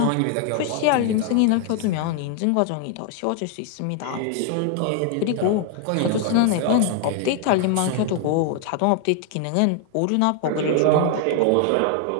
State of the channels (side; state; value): both; different; correlation 0.00